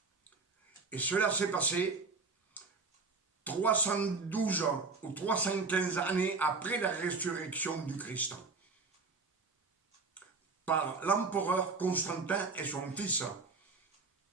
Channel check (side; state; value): left; quieter; 4.2 dB